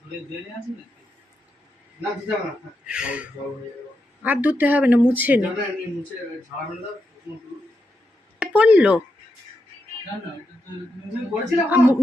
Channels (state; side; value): normal; both; correlation 0.84